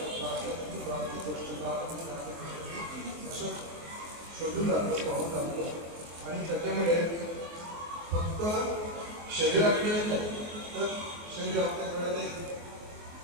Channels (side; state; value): left; late; 24 ms